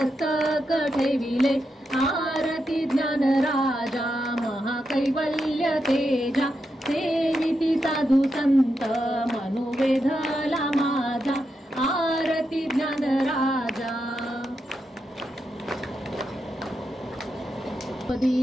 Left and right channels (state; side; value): normal; both; correlation 0.85